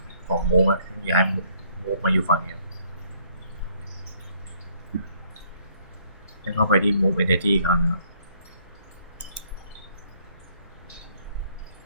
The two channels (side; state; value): both; inverted; correlation -0.65